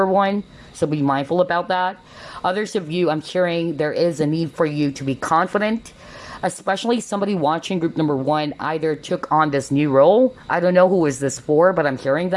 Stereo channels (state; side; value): identical; both; correlation 1.00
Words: 1. So be mindful about that. Others of you, I'm hearing there is a need for you to be confident, especially somebody watching group number 1 either took on this new role. I don't know who is this for, but I'm hearing